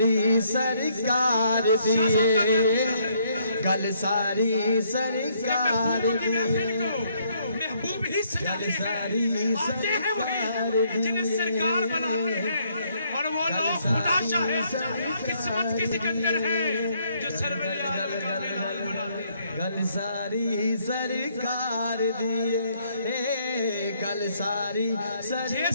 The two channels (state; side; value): inverted; both; correlation -0.69